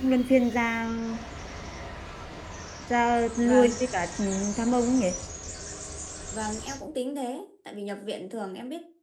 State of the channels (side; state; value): both; identical; correlation 1.00